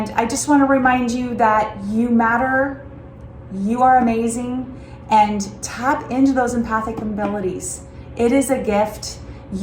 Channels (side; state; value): both; identical; correlation 1.00